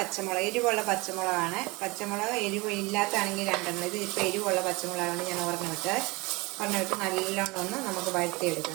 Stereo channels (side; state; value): left; quieter; 24.7 dB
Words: എരിവുള്ള പച്ചമുളകാണ്. പച്ചമുളക് എരിവ് ഇല്ലാത്താണെങ്കിൽ 2 ഇത് ഇപ്പോൾ എരിവുള്ള പച്ചമുളകാണ് ഞാൻ ഒരെണ്ണിട്ട് നല്ലോണം ഒന്ന് നമുക്ക്